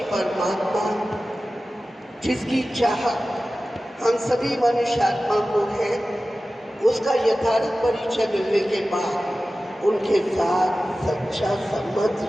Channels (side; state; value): both; normal; correlation 0.95